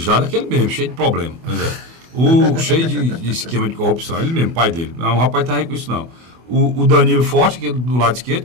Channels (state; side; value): late; left; 24 ms